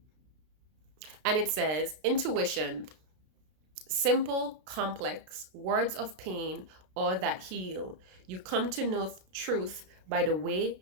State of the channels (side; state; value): left; late; 32 ms